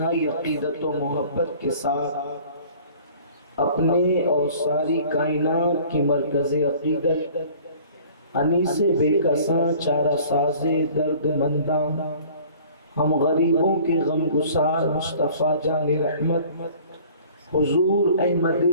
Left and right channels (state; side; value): inverted; both; correlation -0.49